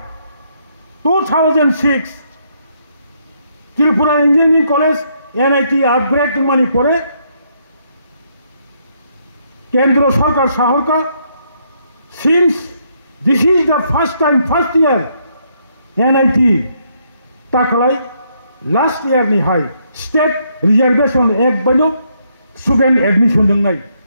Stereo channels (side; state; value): both; inverted; correlation -0.73